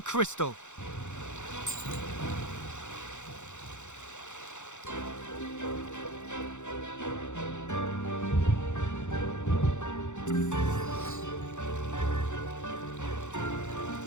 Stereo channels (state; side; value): late; right; 0.84 ms